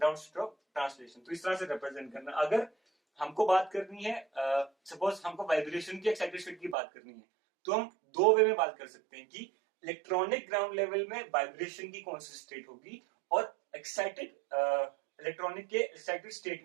state of translation. तो इस तरह से represent करना. अगर हमको बात करनी है, सपोज हमको वाइब्रेशन की एक्साइटेड स्टेट की बात करनी है, तो हम दो वे में बात कर सकते हैं कि इलेक्ट्रॉनिक ग्राउंड लेवल में वाइब्रेशन की कौन सी स्टेट होगी और एक्साइटेड इलेक्ट्रॉनिक के एक्साइटेड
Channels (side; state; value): left; drops out; at 6.8 s